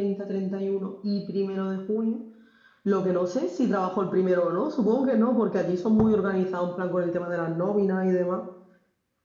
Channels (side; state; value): both; identical; correlation 1.00